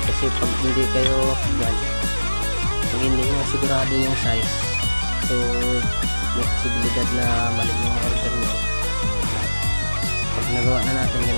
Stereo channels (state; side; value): inverted; both; correlation -1.00